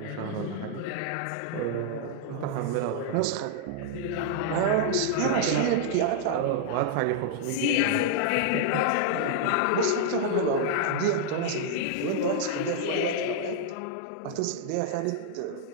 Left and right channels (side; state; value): both; different; correlation -0.01